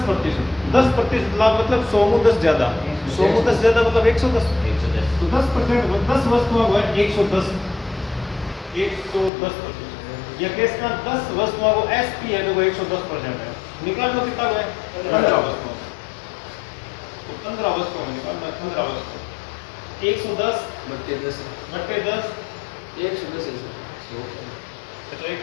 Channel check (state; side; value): drops out; right; at 9.3 s